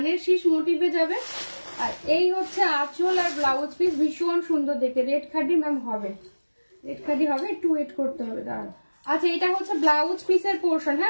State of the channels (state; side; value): inverted; both; correlation -1.00